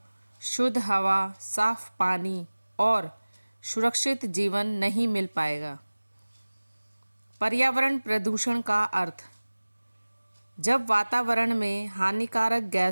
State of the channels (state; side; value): inverted; both; correlation -1.00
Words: शुद्ध हवा, साफ पानी और सुरक्षित जीवन नहीं मिल पाएगा। पर्यावरण प्रदूषण का अर्थ: जब वातावरण में हानिकारक